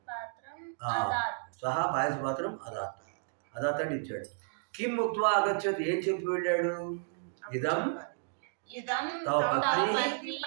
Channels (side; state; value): left; silent; digital silence